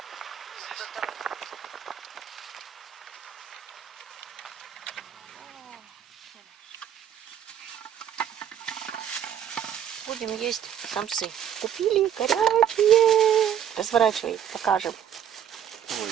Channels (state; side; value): quieter; left; 9.4 dB